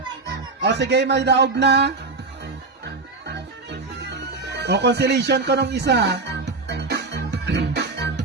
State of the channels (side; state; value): left; quieter; 3.8 dB